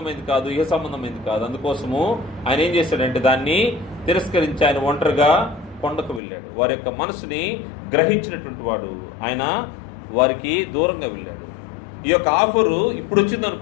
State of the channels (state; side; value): drops out; right; at 6.2 s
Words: కాదు, ఇహ సంబంధమైంది కాదు. అందుకోసము ఆయన ఏం చేశాడంటే, దాన్ని తిరస్కరించి ఆయన ఒంటరిగా కొండకు వెళ్ళాడు. వారి యొక్క మనసుని గ్రహించినటువంటి వాడు ఆయన వారికి దూరంగా వెళ్ళాడు. ఈ యొక్క ఆఫరు ఇప్పుడు వచ్చింది